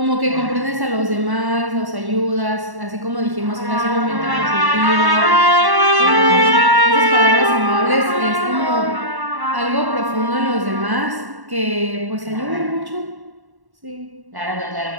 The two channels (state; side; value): late; left; 1.1 ms